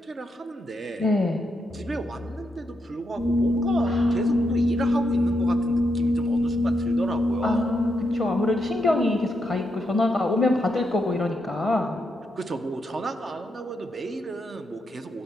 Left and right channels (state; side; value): normal; both; correlation 0.82